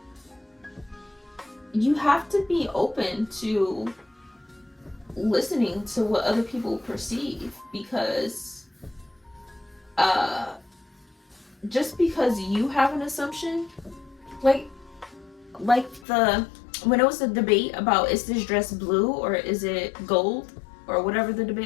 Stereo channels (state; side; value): drops out; right; at 16.1 s